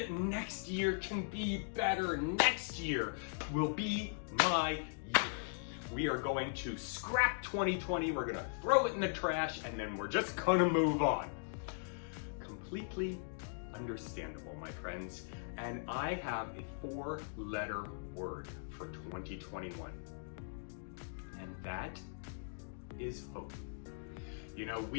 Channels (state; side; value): silent; right; digital silence